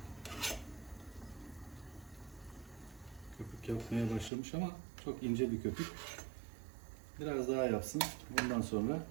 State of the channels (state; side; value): drops out; left; at 4.3 s